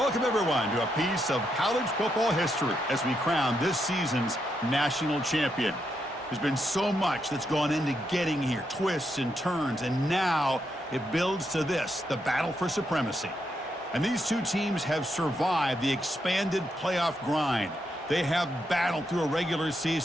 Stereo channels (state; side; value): normal; both; correlation 0.81